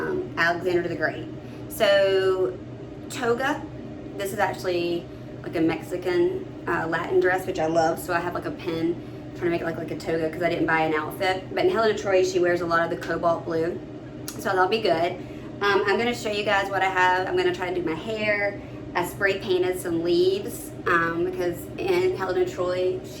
Alexander the Great. So toga, this is actually like a Mexican Latin dress, which I love, so I have like a pin trying to make it look like a toga because I didn't buy an outfit. But in Helen of Troy, she wears a lot of the cobalt blue, so that'll be good. I'm going to show you guys what I have. I'm going to try to do my hair. I spray painted some leaves because in Helen of Troy,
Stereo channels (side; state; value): both; identical; correlation 1.00